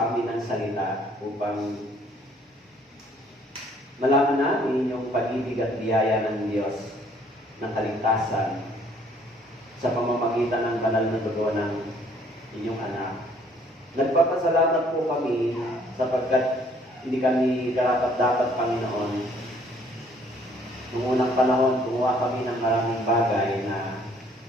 amin ng salita upang malaman namin yung pag-ibig at biyaya ng Diyos ng kaligtasan sa pamamagitan ng banal na dugo ng inyong anak. Nagpapasalamat po kami sapagkat hindi kami karapat-dapat, Panginoon. Noong unang panahon, gumawa kami ng maraming bagay na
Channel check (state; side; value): normal; both; correlation 0.61